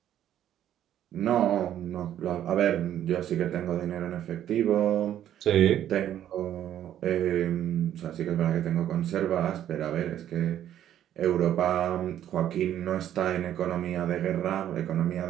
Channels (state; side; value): quieter; left; 11.1 dB